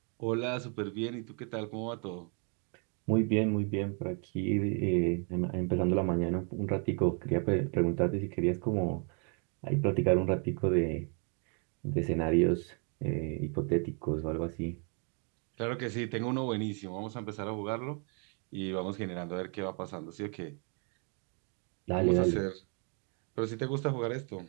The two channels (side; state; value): left; quieter; 39.2 dB